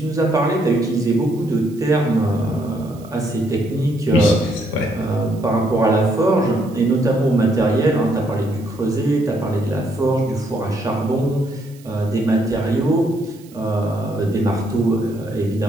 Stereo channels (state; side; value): noise; right; hiss, 26 dB below the sound